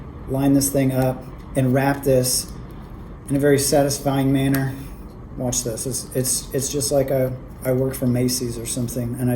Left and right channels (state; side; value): identical; both; correlation 1.00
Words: line this thing up and wrap this in a very satisfying manner. Watch this. It's just like I worked for Macy's or something and